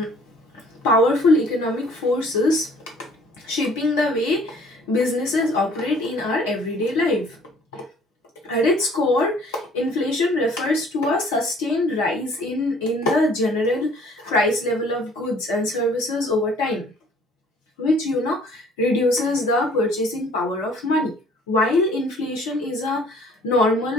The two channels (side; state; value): both; normal; correlation 0.56